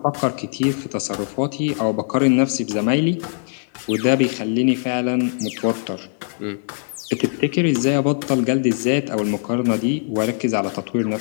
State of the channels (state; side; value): silent; right; 57 dB below the other